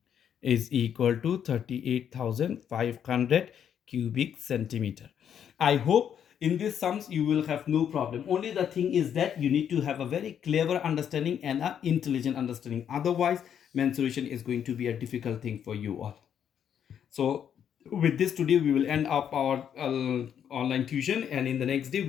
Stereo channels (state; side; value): quieter; right; 8.8 dB